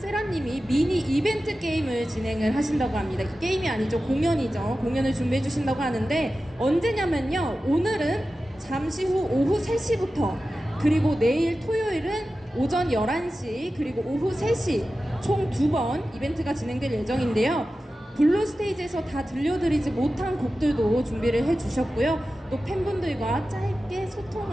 미니 이벤트 게임을 진행을 하신다고 합니다. 이 게임이 아니죠. 공연이죠. 공연을 준비해 주신다고 하는데 언제냐면요. 오늘은 잠시 후 오후 3시부터 그리고 내일 토요일은 오전 11시 그리고 오후 3시 총 2번 이벤트가 진행될 예정인데요. 블루 스테이지에서 다 들려드리지 못한 곡들도 준비를 해주셨고요. 또 팬분들과 짧게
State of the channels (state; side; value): normal; both; correlation 0.94